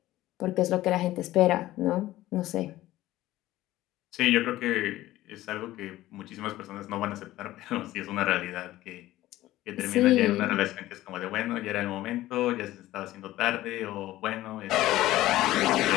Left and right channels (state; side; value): quieter; right; 15.7 dB